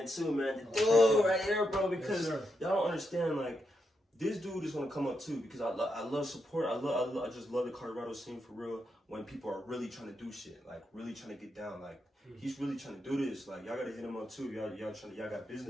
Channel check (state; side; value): normal; both; correlation 0.83